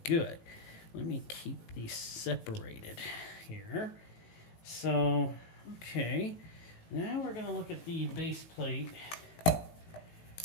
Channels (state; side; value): late; right; 18 ms